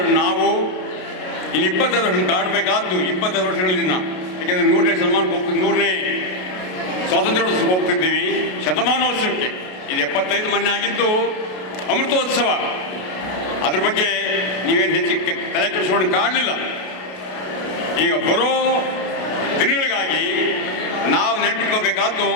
ನಾವು. ಇಲ್ಲಿ 25 ವರ್ಷ ಕಾಣಬೇಕಾದ್ದು 25 ವರ್ಷಗಳಿಂದ. ಯಾಕೆಂದರೆ 100ನೇ ಶತಮಾನಕ್ಕೆ ಹೋಗ್ತಿದ್ದು, 100ನೇ ಸ್ವಾತಂತ್ರ್ಯೋತ್ಸವ ಹೋಗ್ತಿದ್ದೀವಿ, ಶತಮಾನೋತ್ಸವಕ್ಕೆ. ಇದು 75 ಮೊನ್ನೆ ಆಗಿದ್ದು ಅಮೃತೋತ್ಸವ. ಅದ್ರ ಬಗ್ಗೆ ನೀವೇನು ಹೆಚ್ಚು ತಲೆ ಕೆಡಿಸ್ಕೊಂಡು ಕಾಣಲಿಲ್ಲ. ಈಗ ಬರೋ ದಿನಗಳಿಗಾಗಿ ನಾವು ನೆನಪಿಟ್ಕೋಬೇಕಾದ್ದು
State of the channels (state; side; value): late; right; 33 ms